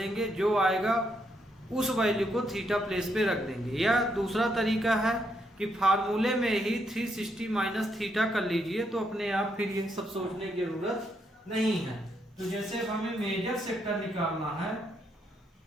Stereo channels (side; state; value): both; normal; correlation 0.77